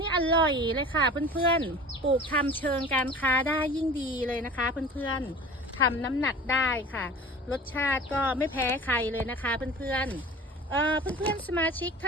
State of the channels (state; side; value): normal; both; correlation 0.40